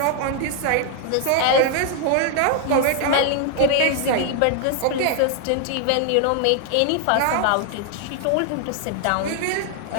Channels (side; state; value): both; different; correlation 0.00